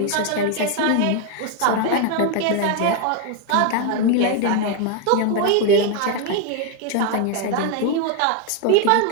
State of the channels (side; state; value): both; different; correlation 0.01